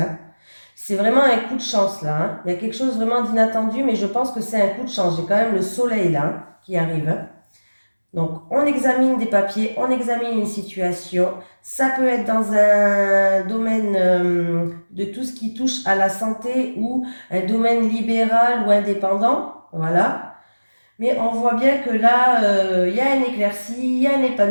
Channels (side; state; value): both; inverted; correlation -1.00